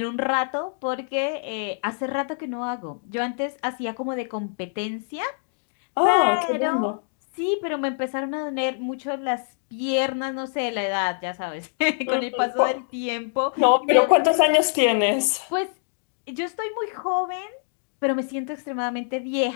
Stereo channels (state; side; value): silent; right; digital silence